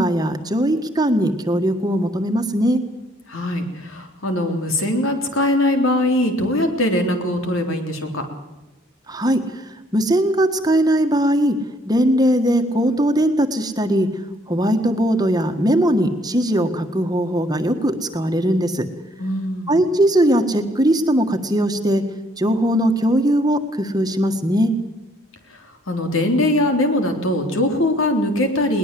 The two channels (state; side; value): normal; both; correlation 0.64